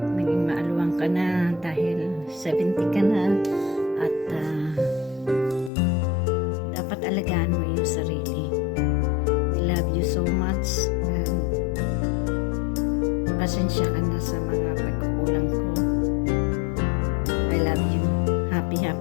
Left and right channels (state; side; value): drops out; right; at 5.7 s